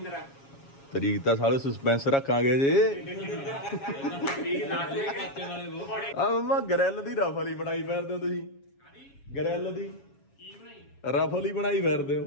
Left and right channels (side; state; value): right; late; 7.3 ms